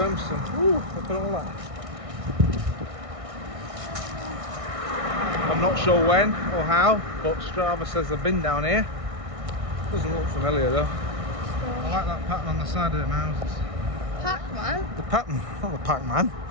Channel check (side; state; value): left; late; 1.6 ms